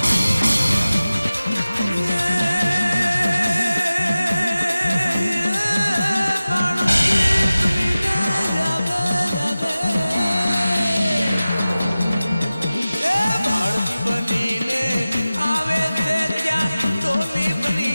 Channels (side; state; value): both; inverted; correlation -0.96